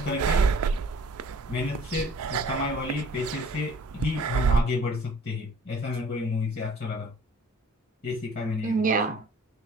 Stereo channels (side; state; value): both; normal; correlation 0.51